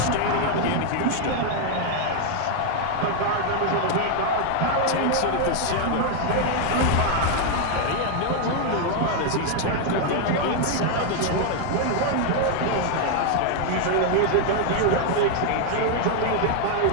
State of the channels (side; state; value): both; different; correlation 0.00